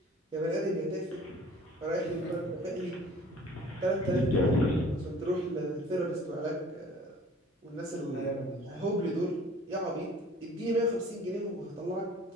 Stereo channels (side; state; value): both; normal; correlation 0.50